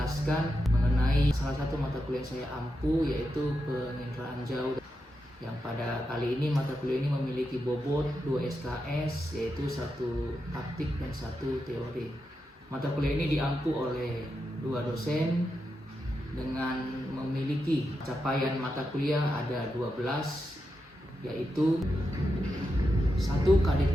mengenai salah satu mata kuliah yang saya ampu, yaitu penginderaan jauh, yang pada kali ini mata kuliah ini memiliki bobot 2 SKS, yaitu satu praktik dan satu teori. Mata kuliah ini diampu oleh 2 dosen dengan memiliki capaian mata kuliah ada 12, yaitu 1. Kadit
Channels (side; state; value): both; normal; correlation 0.87